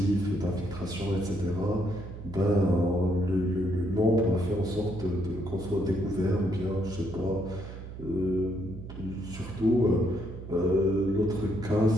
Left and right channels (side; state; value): right; noise; hum, 11 dB below the sound